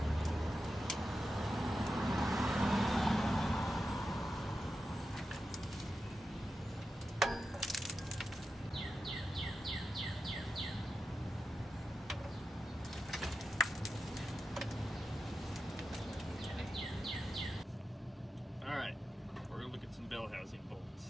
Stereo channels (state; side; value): normal; both; correlation 0.90